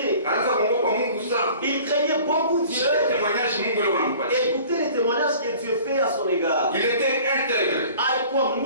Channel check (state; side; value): inverted; both; correlation -0.47